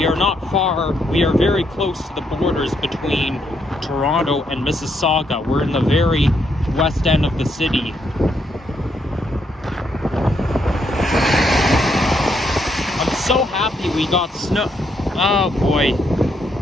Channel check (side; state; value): both; normal; correlation 0.76